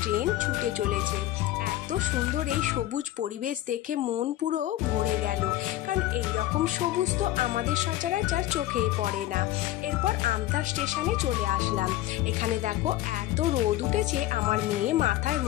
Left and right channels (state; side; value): quieter; right; 14.7 dB